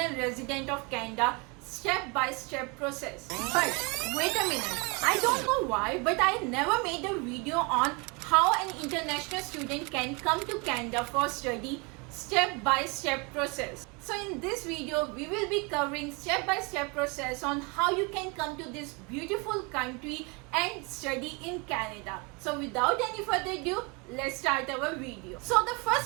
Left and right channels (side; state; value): left; quieter; 29.9 dB